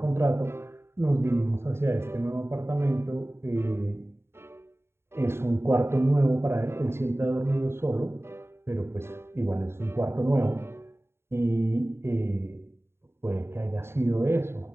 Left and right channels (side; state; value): left; late; 0.12 ms